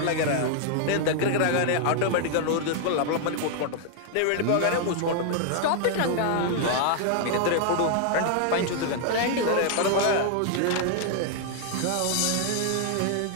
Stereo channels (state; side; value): different; both; correlation 0.00